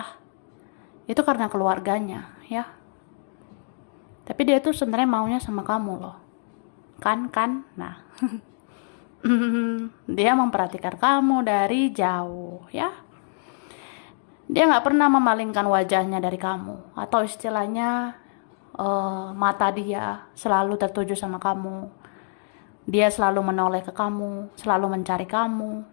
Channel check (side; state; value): right; silent; digital silence